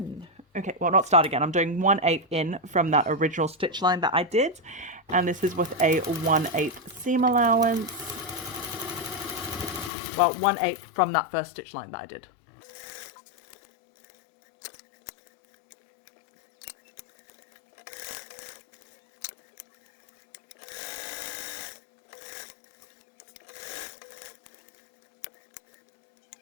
Okay, well, not start again. I'm doing 1/8 in from that original stitch line that I did, and this is with a 1/8 seam allowance. Well, 1/8 from that first stitch line that I did.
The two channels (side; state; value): right; drops out; at 9.9 s